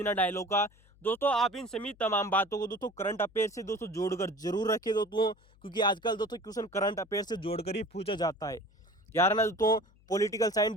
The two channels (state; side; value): noise; left; hum, 29 dB below the sound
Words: डायलॉग का। दोस्तों आप इन सभी तमाम बातों को दोस्तों करंट अफेयर से दोस्तों जोड़कर जरूर रखें दोस्तों, क्योंकि आजकल दोस्तों क्वेश्चन करंट अफेयर से जोड़कर ही पूछा जाता है। यार ना दोस्तों पॉलिटिकल साइंस